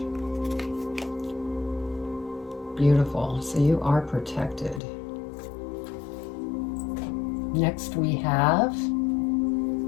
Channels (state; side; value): drops out; right; at 4.8 s